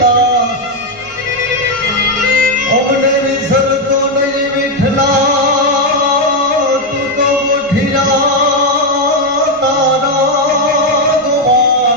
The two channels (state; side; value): normal; both; correlation 0.04